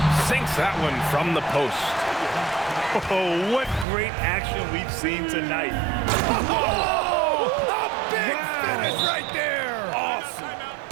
Sinks that one from the post. Oh, what great action we've seen tonight. Oh, a big finish right there. Awesome.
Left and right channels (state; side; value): drops out; left; at 3.9 s